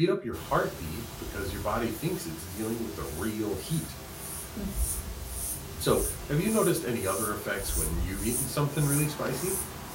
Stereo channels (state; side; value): identical; both; correlation 1.00